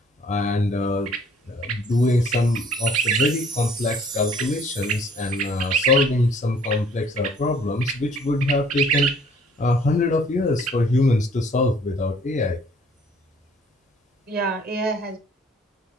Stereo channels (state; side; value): normal; both; correlation 0.58